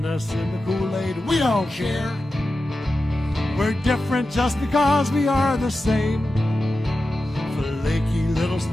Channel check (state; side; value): normal; both; correlation 0.92